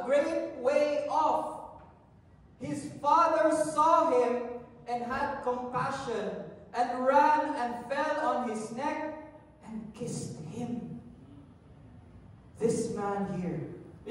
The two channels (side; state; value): both; identical; correlation 1.00